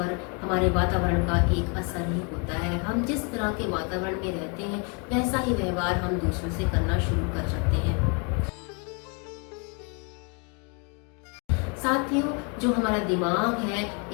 हमारे वातावरण का एक असर ही होता है। हम जिस तरह के वातावरण में रहते हैं वैसा ही व्यवहार हम दूसरों से करना शुरू कर सकते हैं। साथियों, जो हमारा दिमाग है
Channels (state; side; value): quieter; right; 35.2 dB